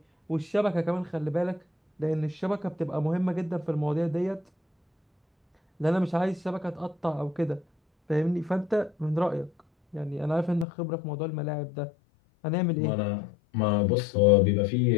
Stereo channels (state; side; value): drops out; right; at 10.7 s